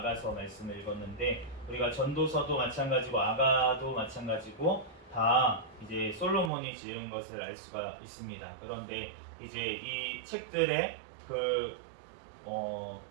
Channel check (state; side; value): drops out; left; at 6.5 s